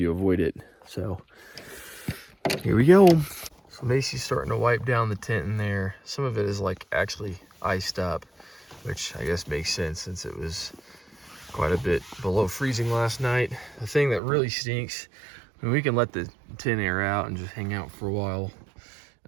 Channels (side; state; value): left; drops out; at 14.2 s